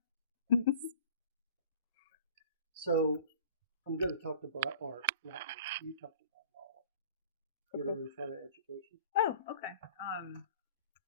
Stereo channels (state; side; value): inverted; both; correlation -0.45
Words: So I'm going to talk about art. You talked about all. You're in front of education. Oh, okay.